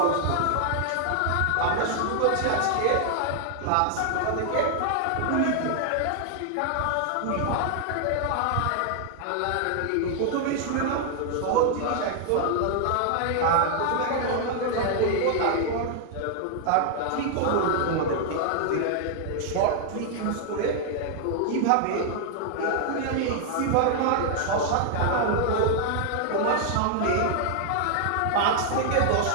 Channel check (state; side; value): different; both; correlation 0.00